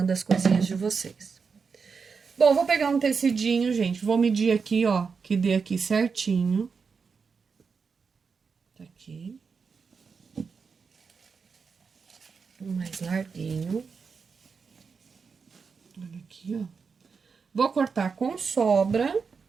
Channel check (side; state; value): left; quieter; 5.4 dB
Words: as coisinhas de vocês. Bom, vou pegar um tecidinho, gente. Vou medir aqui, ó, que dê aqui certinho. Tá aqui. Um mais larguinho. Olha aqui, ó. Vou cortar com sobra.